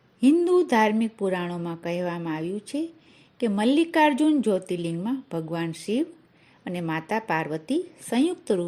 હિન્દુ ધાર્મિક પુરાણોમાં કહેવામાં આવ્યું છે કે મલ્લિકાર્જુન જ્યોતિર્લિંગમાં ભગવાન શિવ અને માતા પાર્વતી સંયુક્ત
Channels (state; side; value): identical; both; correlation 1.00